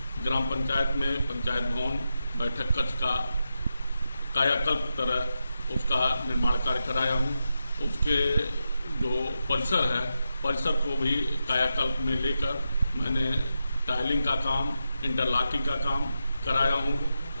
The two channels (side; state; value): both; inverted; correlation -0.88